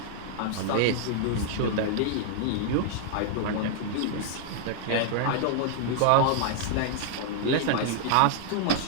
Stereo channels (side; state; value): both; different; correlation -0.01